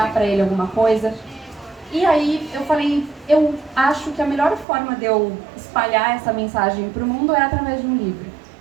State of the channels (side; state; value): left; drops out; at 4.7 s